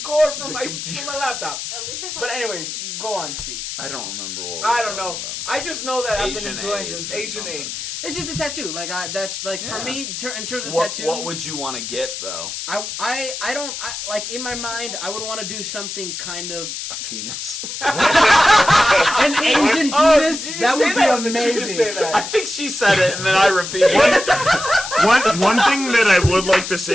cord from my computer. from my laptop. At least I But anyways, Go on, Steve. I don't remember what. I don't know. I just know that I've been Asian enjoying AIDS this or Asian something. AIDS. It's just a tattoo. Like that's like for Yeah. me in terms of What, tattoo. what would you want to get though? I don't like in my mind. I would want to do something kind of A penis. an Asian penis. Did you That say would be that or did you just amazing. say that? I think she said it and then I repeated it. One thing that I would like to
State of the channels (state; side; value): noise; left; hiss, 7 dB below the sound